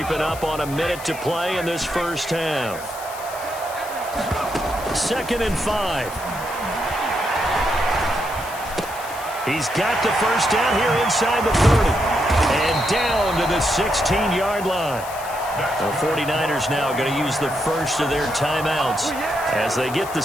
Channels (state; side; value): noise; left; hiss, 14 dB below the sound